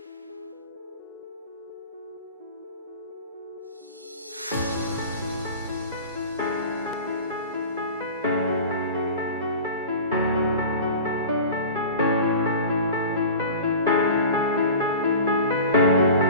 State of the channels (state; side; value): inverted; both; correlation -0.37